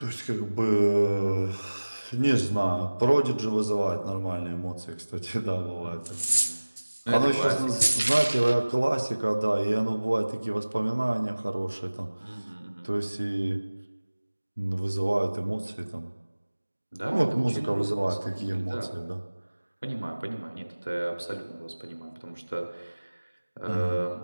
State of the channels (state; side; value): inverted; both; correlation -1.00